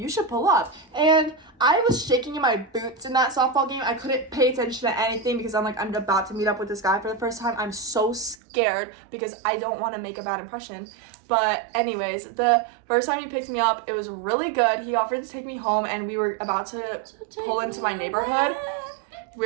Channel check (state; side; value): drops out; left; at 8.3 s